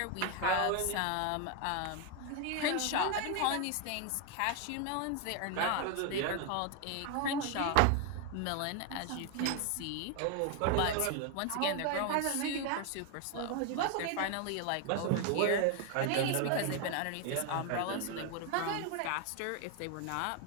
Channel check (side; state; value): both; different; correlation 0.01